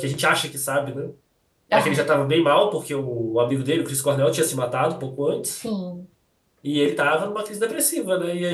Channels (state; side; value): identical; both; correlation 1.00